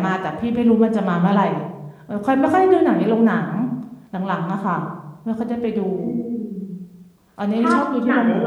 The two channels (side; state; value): both; identical; correlation 1.00